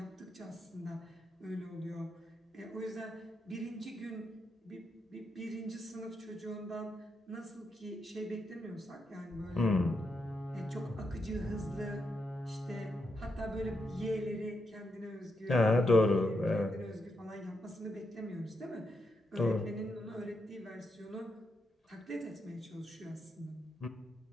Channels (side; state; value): both; normal; correlation 0.83